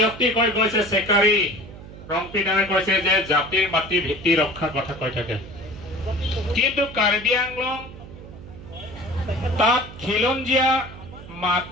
কৈ গৈছে, চেকাৰী ৰংপিনাৰে কৈছে যে জাতিৰ মাটি ভিত্তি ৰক্ষাৰ কথা কৈ থাকে, কিন্তু কাৰ্বি আংলং তাত খিলঞ্জীয়া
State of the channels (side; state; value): right; noise; hum, 15 dB below the sound